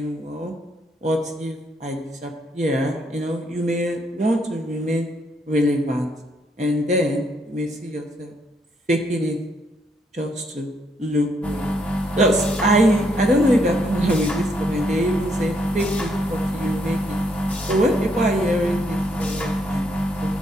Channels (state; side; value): normal; both; correlation 0.73